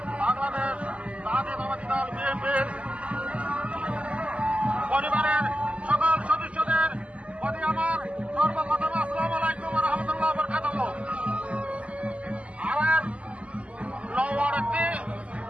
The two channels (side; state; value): left; late; 0.062 ms